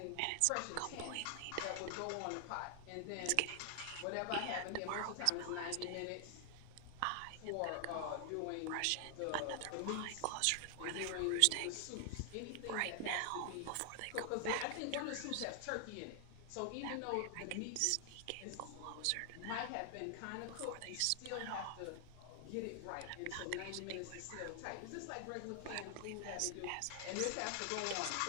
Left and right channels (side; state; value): both; different; correlation 0.00